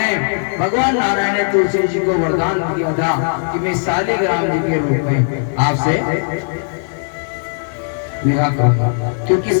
भगवान नारायण ने तुलसी जी को वरदान दिया था कि मैं शालिग्राम जी के रूप में आपसे विवाह करूंगा, क्योंकि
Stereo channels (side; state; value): right; silent; digital silence